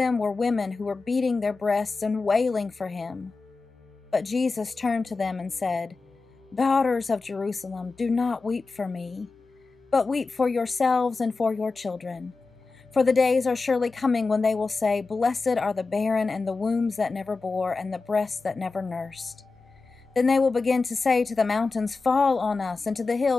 were women who were beating their breasts and wailing for him. But Jesus turned to them and said, "Daughters of Jerusalem, do not weep for me, but weep for yourselves and for your children. For the days are surely coming when they will say, 'Blessed are the barren and the wombs that never bore and the breasts that never nursed.' Then they will begin to say to the mountains, 'Fall on us,' and to the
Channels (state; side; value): quieter; right; 4.0 dB